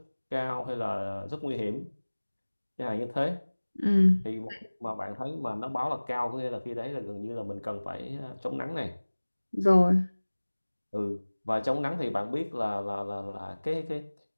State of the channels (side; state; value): both; inverted; correlation -1.00